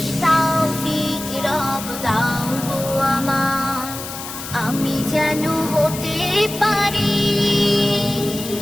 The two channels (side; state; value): left; noise; hiss, 9 dB below the sound